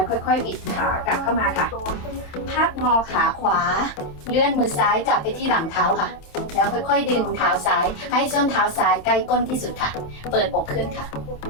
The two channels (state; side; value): late; right; 27 ms